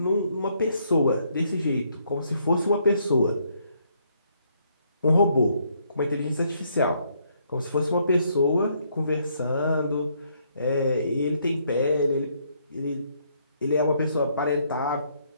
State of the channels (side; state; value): both; inverted; correlation -0.71